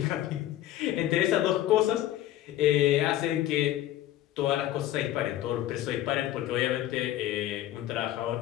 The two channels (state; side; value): quieter; right; 13.5 dB